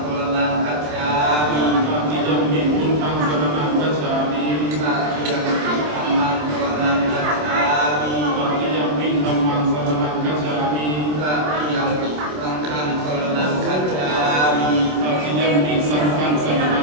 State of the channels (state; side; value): late; left; 27 ms